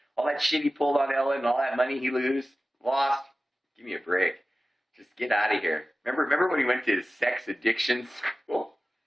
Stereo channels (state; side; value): normal; both; correlation 0.95